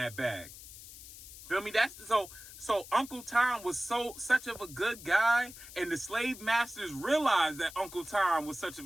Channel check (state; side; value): noise; left; hiss, 15 dB below the sound